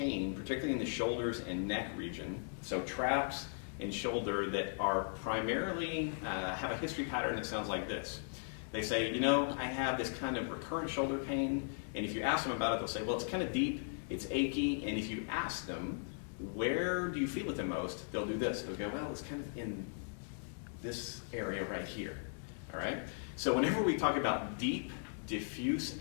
particularly in the shoulders and neck region, so traps in shoulder that are primarily, have a history pattern that sounds like this. They say, you know, I have this kind of recurrent shoulder pain, and if you ask them about it, they'll say, well, it's kind of deep, it's achy, and if you ask them, where do you feel it the most, they'll do this. They'll go, well, it's kind of in this area right here, all right? So whenever we talk about deep, diffuse,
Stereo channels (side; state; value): right; silent; digital silence